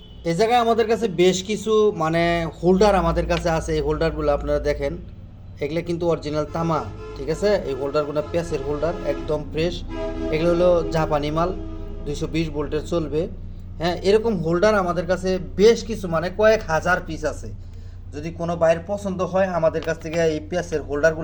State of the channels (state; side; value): identical; both; correlation 1.00